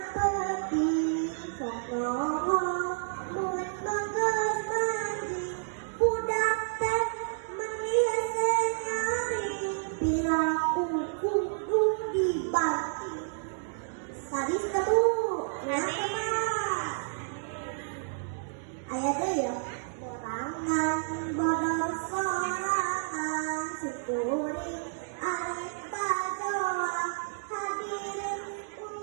peti. Sok nongol mulut bagus mandi. Budak teh meniase nyari. Pilaku kudu dibati. Sadis kedu kenapa ayah deh ya borangan bodor sorangan syukurin arif bajoa hadirin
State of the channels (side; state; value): left; silent; digital silence